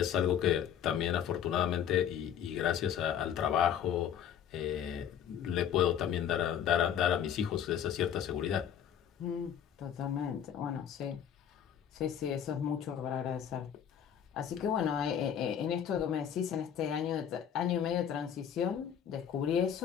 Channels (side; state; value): right; quieter; 9.0 dB